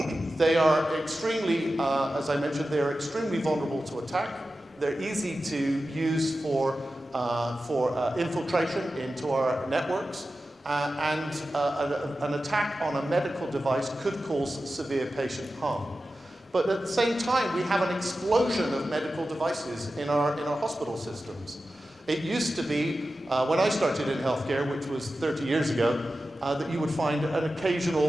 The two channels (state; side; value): normal; both; correlation 0.93